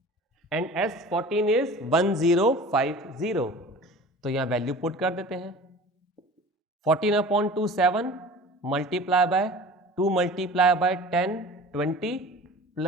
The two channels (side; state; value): both; normal; correlation 0.40